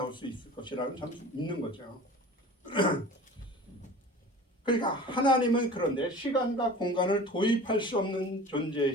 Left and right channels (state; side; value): normal; both; correlation 0.40